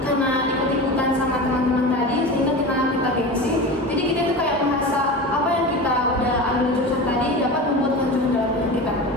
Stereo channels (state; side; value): normal; both; correlation 0.29